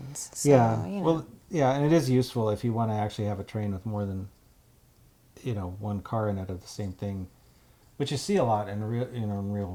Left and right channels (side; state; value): both; identical; correlation 1.00